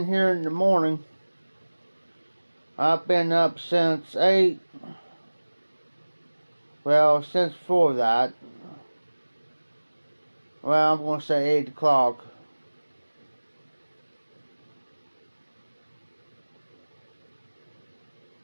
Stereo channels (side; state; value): both; inverted; correlation -1.00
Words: here in the morning. I've been up since 8. Well, since before that. Well, I'm going to say 8 o'clock.